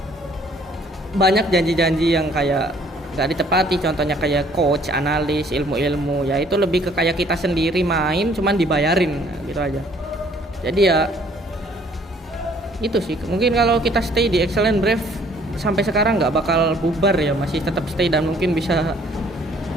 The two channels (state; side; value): normal; both; correlation 0.60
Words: banyak janji-janji yang kayak nggak ditepati, contohnya kayak coach, analis, ilmu-ilmu, ya itu lebih ke kayak kita sendiri main cuman dibayarin gitu aja. Jadi ya itu sih, mungkin kalau kita stay di Excellent Brave sampai sekarang nggak bakal bubar ya, masih tetap stay dan mungkin bisa